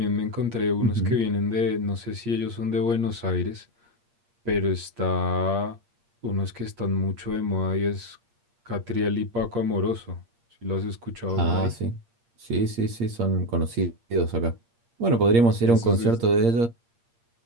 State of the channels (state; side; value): late; left; 8.6 ms